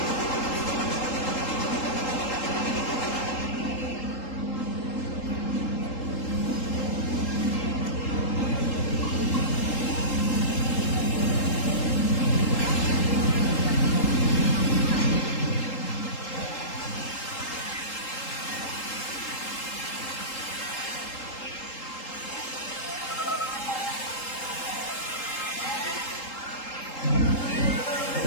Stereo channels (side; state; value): right; late; 3.8 ms